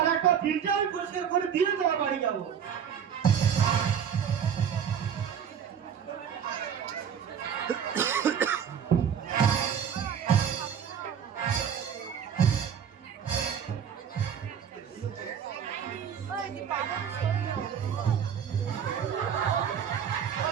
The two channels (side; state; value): left; quieter; 8.0 dB